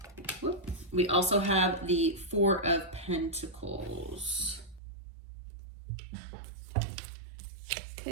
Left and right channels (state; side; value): drops out; left; at 4.8 s